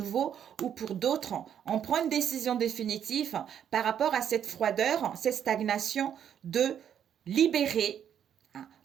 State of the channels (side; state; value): left; quieter; 9.1 dB